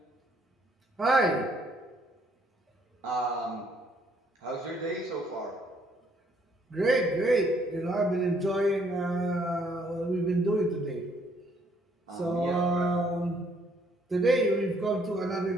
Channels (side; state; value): both; normal; correlation 0.66